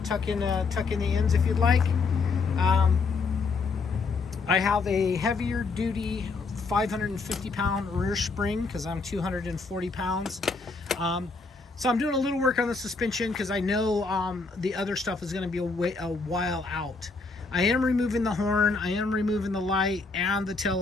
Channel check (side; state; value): right; quieter; 4.2 dB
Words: tuck in the ends if you'd like. I have a heavier duty 550 pound rear spring because I'm 240 pounds. So I'm doing a little work on the suspension because I know the other stuff is going to be a while out. I am removing the horn, I am removing the light and the tail